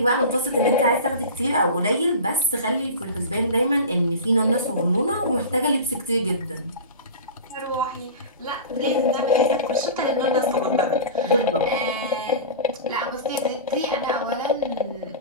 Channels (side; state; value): both; inverted; correlation -0.32